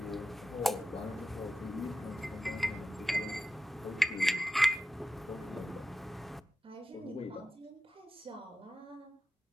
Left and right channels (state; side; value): normal; both; correlation 0.93